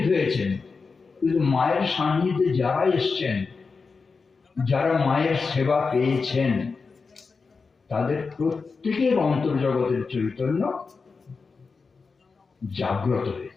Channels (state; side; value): quieter; right; 4.7 dB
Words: হয়েছেন, কিন্তু মায়ের সান্নিধ্যে যারা এসছেন, যারা মায়ের সেবা পেয়েছেন, তাদের প্রত্যেকের অন্তর্জগতের চৈতন্য জাগ্রত